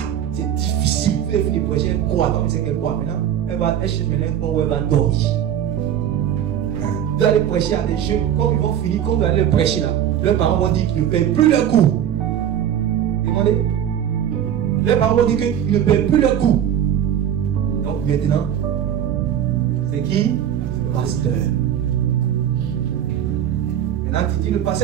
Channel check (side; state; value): left; quieter; 10.0 dB